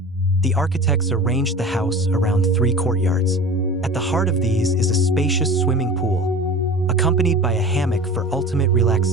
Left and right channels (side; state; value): both; normal; correlation 0.37